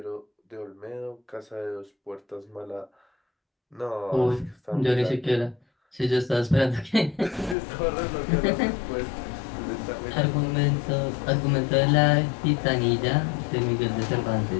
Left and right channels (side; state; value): right; drops out; at 7.6 s